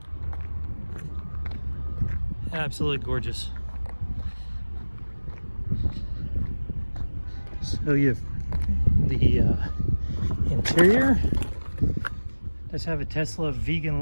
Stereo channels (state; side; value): inverted; both; correlation -1.00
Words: Absolutely gorgeous. So you have the interior. Does have a Tesla